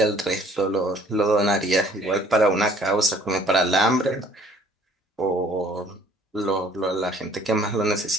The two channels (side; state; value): both; normal; correlation 0.57